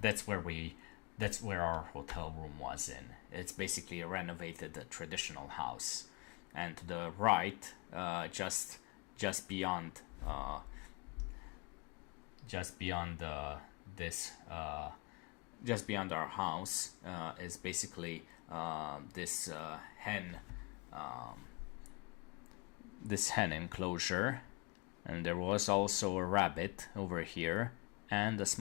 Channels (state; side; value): quieter; right; 28.0 dB